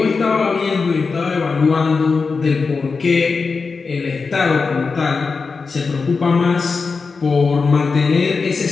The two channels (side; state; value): right; quieter; 4.7 dB